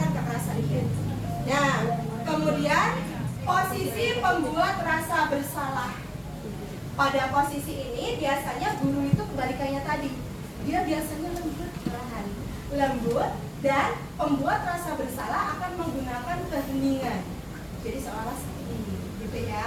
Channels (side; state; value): both; identical; correlation 1.00